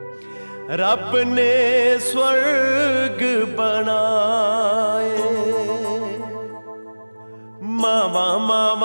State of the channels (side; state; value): both; inverted; correlation -1.00